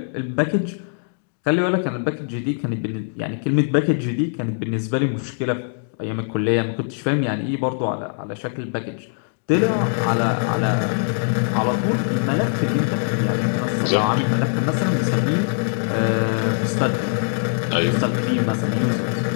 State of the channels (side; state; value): right; silent; 64 dB below the other